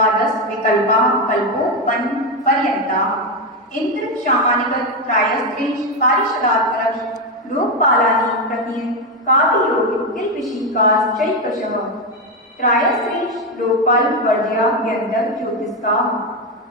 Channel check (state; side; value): normal; both; correlation 0.09